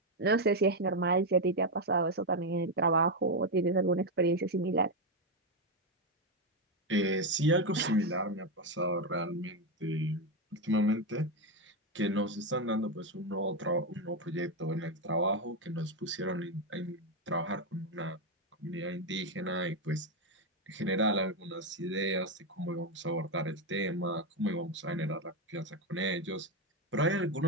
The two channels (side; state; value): both; normal; correlation 0.06